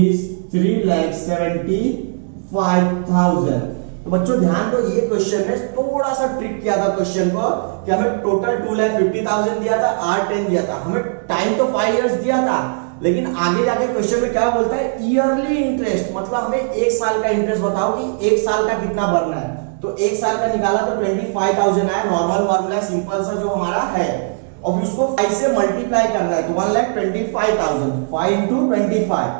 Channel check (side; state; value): left; silent; 67 dB below the other